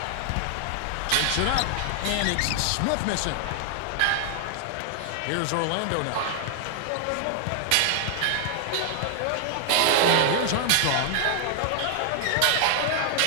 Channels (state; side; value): different; both; correlation 0.00